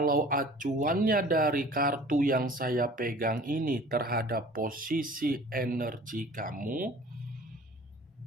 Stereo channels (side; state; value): both; normal; correlation 0.47